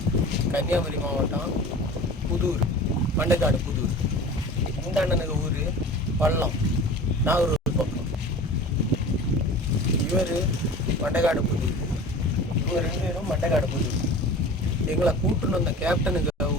கன்னியாகுமரி மாவட்டம் புதூர், மண்டைக்காடு புதூர். இந்த அண்ணனுக்கு ஊர் பள்ளம், நாகூர் பக்கம். இவர் மண்டைக்காடு புதூர், இவங்க 2 பேரும் மண்டைக்காடு புதூர். எங்களை கூட்டுன்னு வந்த கேப்டனுக்கு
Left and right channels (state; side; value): normal; both; correlation 0.38